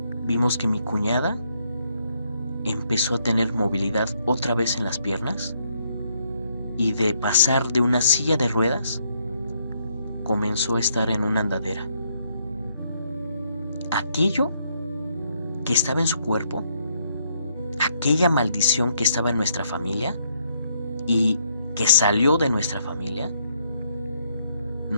vimos que mi cuñada empezó a tener movilidad otra vez en las piernas y de pasar de una silla de ruedas comenzó a estar en una andadera. Aquello que estaba en su cuerpo, aquella maldición que estaba en nuestra familia y que salió de nuestra familia,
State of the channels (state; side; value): inverted; both; correlation -0.73